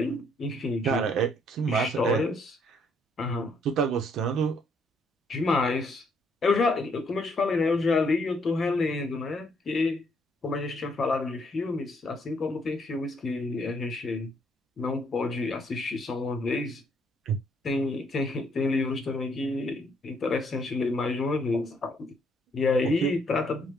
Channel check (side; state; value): both; normal; correlation 0.69